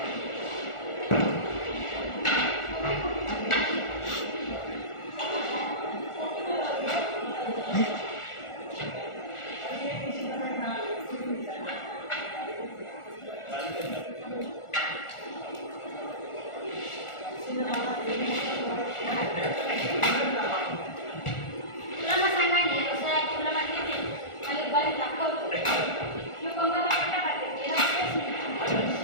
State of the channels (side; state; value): right; late; 1.4 ms